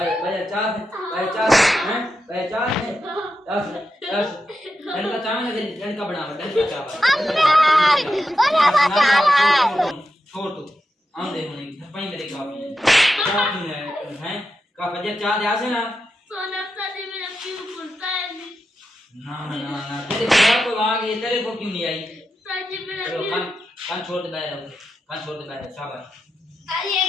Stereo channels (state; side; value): normal; both; correlation 0.88